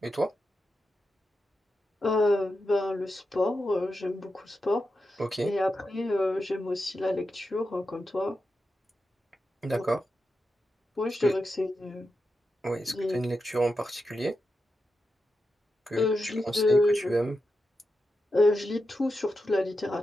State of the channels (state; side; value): normal; both; correlation 0.89